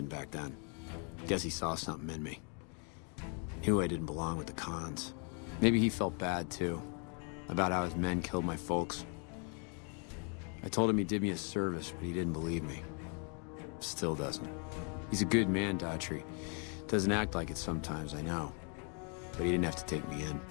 back then. Guess he saw something in me. Knew I didn't belong with the cons. Maybe he felt bad, too. About how his men killed my folks. I told him he did me a service, but he didn't believe me. Still doesn't. He's a good man, Daughtry. Doesn't act like it sometimes, I know. But he didn't have to take me in.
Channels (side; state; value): right; quieter; 38.6 dB